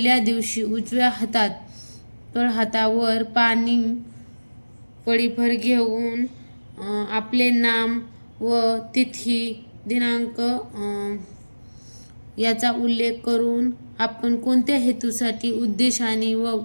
दिवशी उजव्या तळहातावर पाणी पळीभर घेऊन आपले नाम व तिथी दिनांक याचा उल्लेख करून आपण कोणत्या हेतूसाठी, उद्देशाने व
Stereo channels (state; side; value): inverted; both; correlation -1.00